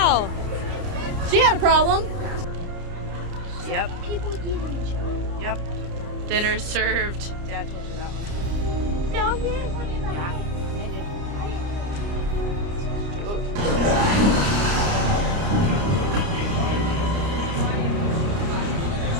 She had a problem. Yep. People eating each other. Yep. Dinner served. Dad told you that one. No, he didn't tell me about Yeah, it. I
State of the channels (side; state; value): left; late; 29 ms